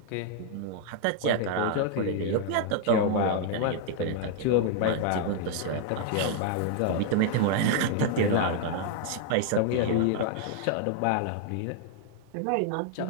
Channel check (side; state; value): both; different; correlation 0.00